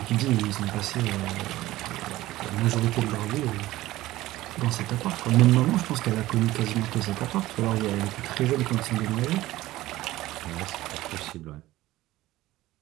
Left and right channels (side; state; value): left; quieter; 16.7 dB